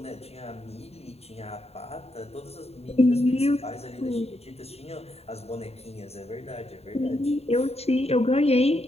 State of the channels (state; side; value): late; right; 0.30 ms